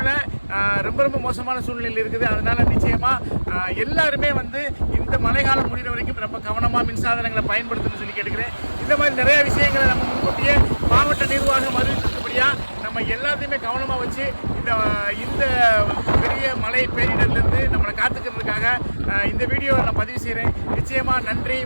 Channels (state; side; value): inverted; both; correlation -1.00